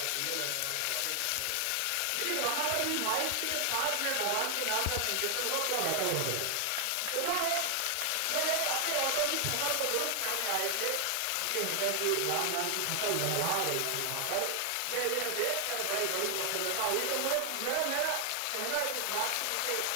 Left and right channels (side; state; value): both; different; correlation 0.00